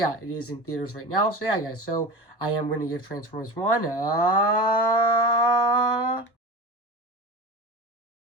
it is in theaters right now. So yeah, guys. So I am going to give Transformers One.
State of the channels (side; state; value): right; late; 1.1 ms